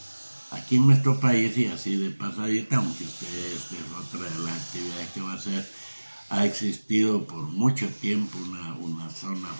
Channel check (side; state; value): both; inverted; correlation -1.00